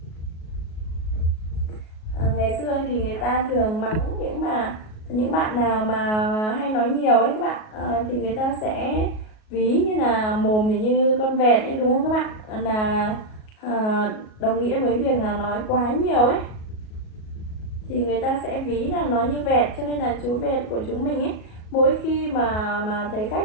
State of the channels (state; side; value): late; right; 37 ms